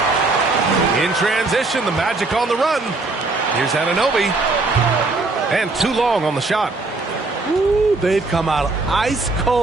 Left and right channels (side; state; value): left; quieter; 3.4 dB